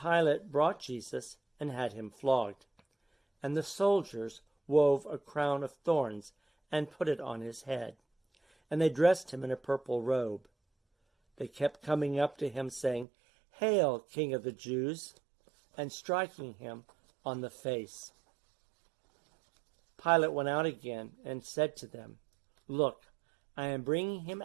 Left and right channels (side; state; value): left; drops out; at 13.1 s